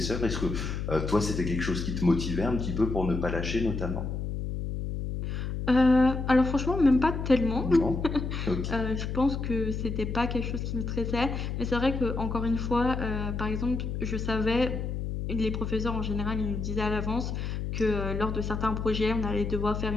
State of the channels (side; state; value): left; noise; hum, 3 dB below the sound